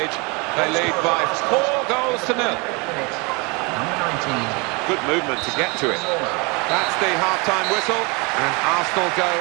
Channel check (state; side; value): quieter; left; 29.1 dB